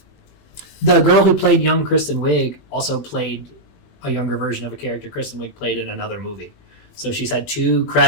The girl who played young Kristen Wiig also played a younger version of a character Kristen Wiig played in another movie. So she's had 2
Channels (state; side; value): late; right; 20 ms